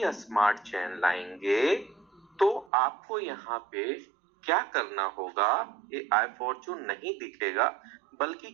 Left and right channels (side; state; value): left; drops out; at 2.7 s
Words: स्मार्ट चेन लाएंगे तो आपको यहाँ पे क्या करना होगा, ये आई फॉर्चून नहीं दिखेगा, बल्कि